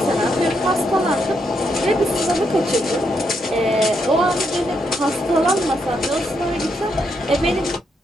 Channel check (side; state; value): both; normal; correlation 0.79